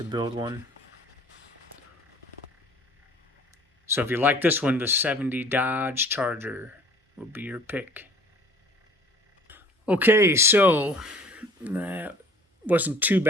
build one. So if you like this one, the 70 Dodge Charger will be your pick. Okay, so that wasn't too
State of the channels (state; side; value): normal; both; correlation 0.50